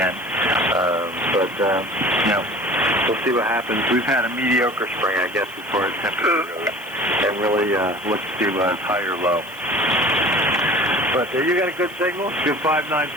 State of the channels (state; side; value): noise; right; hiss, 22 dB below the sound